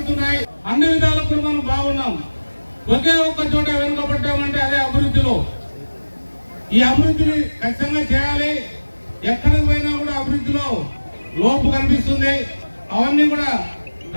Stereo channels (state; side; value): inverted; both; correlation -1.00